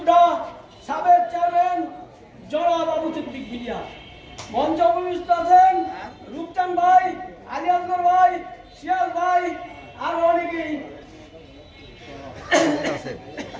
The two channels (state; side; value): identical; both; correlation 1.00